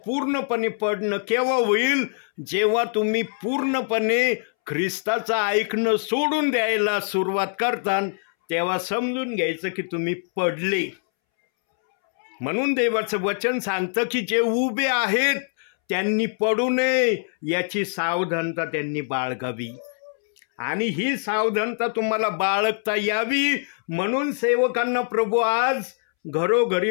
पूर्णपणे पडणं केव्हा होईल? जेव्हा तुम्ही पूर्णपणे ख्रिस्ताचं ऐकणं सोडून द्यायला सुरुवात करता, तेव्हा समजून घ्यायचं की तुम्ही पडले. म्हणून देवाचं वचन सांगतं की जे उभे आहेत त्यांनी पडू नये याची सावधानता त्यांनी बाळगावी. आणि ही सावधानता तुम्हाला बाळगता यावी म्हणून सेवकांना प्रभू आज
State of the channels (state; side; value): silent; right; 63 dB below the other